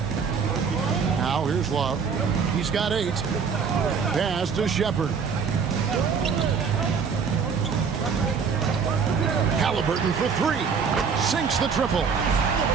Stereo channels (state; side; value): quieter; left; 6.0 dB